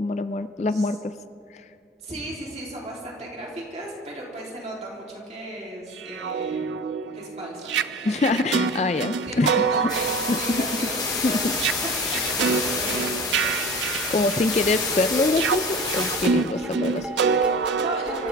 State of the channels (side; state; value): both; normal; correlation 0.37